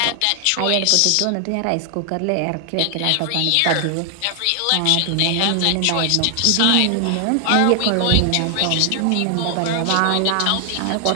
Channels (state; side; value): different; both; correlation 0.00